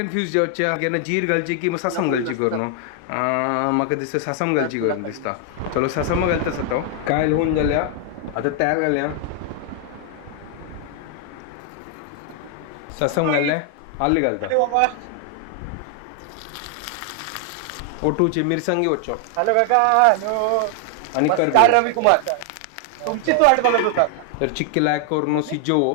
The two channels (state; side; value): different; both; correlation 0.00